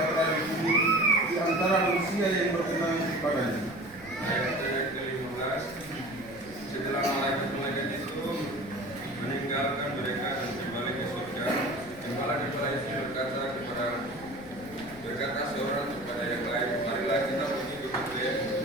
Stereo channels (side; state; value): right; noise; rumble, 23 dB below the sound